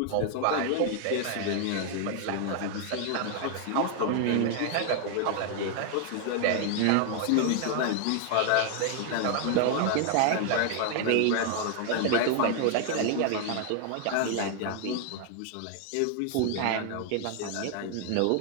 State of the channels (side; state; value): both; different; correlation 0.00